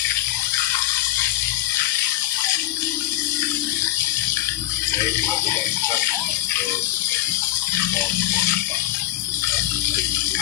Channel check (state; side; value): quieter; right; 15.7 dB